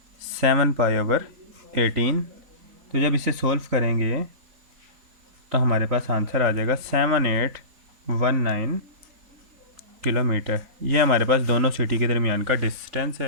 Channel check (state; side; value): late; left; 4.1 ms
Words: 7 पाई ओवर 18। तो जब इसे सॉल्व करेंगे तो हमारे पास आंसर आ जाएगा 7819 किलोमीटर। ये हमारे पास दोनों सिटी के दरमियान का डिस्टेंस